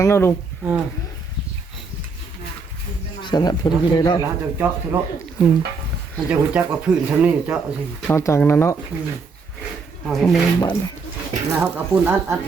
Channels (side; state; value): left; quieter; 4.6 dB